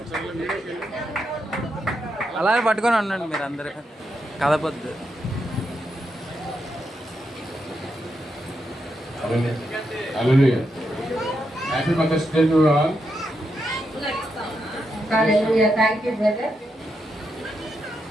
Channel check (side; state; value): both; normal; correlation 0.83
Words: అలాగే పట్టుకొని ఉండండి మీరు అందరూ, కదపొద్దు. Happy mothers day to all. Hallelujah. Thank you brother.